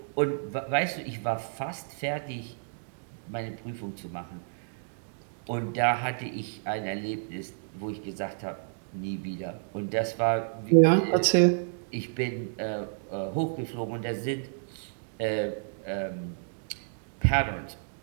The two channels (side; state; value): left; silent; digital silence